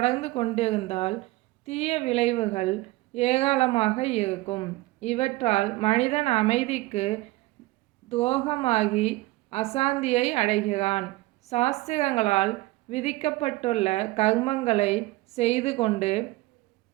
கொண்டிருந்தால் தீய விளைவுகள் ஏராளமாக இருக்கும். இவற்றால் மனிதன் அமைதிக்கு துரோகமாகி அசாந்தியை அடைகிறான். சாஸ்திரங்களால் விதிக்கப்பட்டுள்ள கர்மங்களை செய்து கொண்டு,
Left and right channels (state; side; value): quieter; left; 19.9 dB